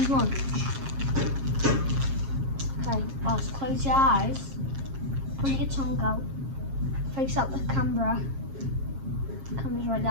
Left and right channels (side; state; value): left; late; 7.4 ms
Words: much. Okay, let's close your eyes. Put your tongue out. Face out the camera. Camera's right